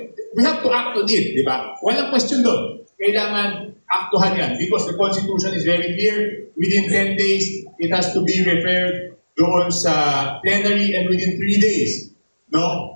we have to act on it, di ba? Walang question doon. Kailangan aktuhan yan because the Constitution is very clear. Within 10 days, it has to be referred doon sa plenary and within 3 days,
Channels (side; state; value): both; inverted; correlation -1.00